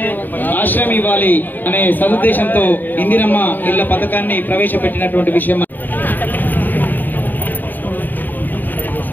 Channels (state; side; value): late; right; 0.089 ms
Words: ఆశ్రయం ఇవ్వాలి అనే సదుద్దేశంతో ఇందిరమ్మ ఇళ్ల పథకాన్ని ప్రవేశపెట్టినటువంటి విషయం.